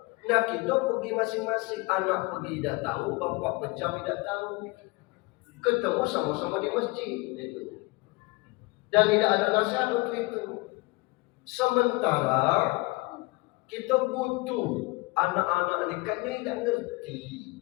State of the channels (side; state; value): right; quieter; 25.1 dB